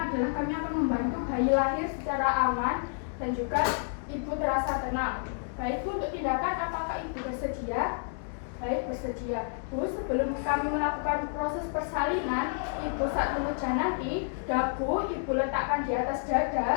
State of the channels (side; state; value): right; silent; digital silence